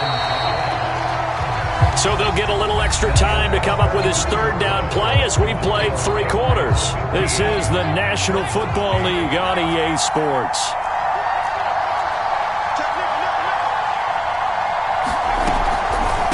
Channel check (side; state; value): both; identical; correlation 1.00